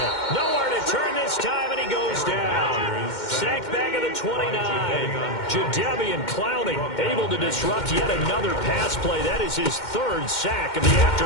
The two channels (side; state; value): right; late; 2.1 ms